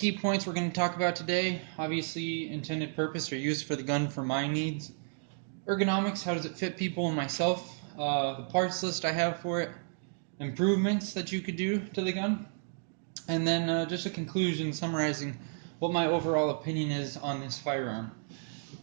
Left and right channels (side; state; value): left; silent; digital silence